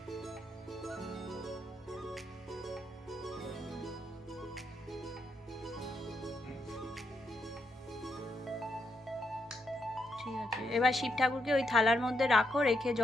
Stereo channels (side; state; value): both; normal; correlation 0.80